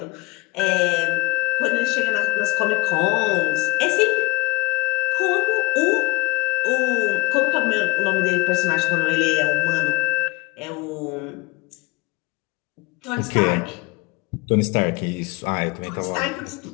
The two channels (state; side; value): quieter; right; 23.1 dB